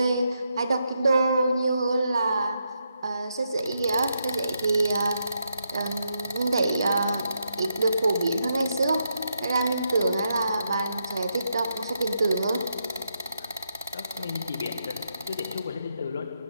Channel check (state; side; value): inverted; both; correlation -0.81